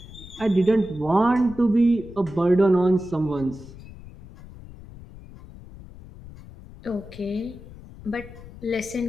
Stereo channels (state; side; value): noise; left; rumble, 17 dB below the sound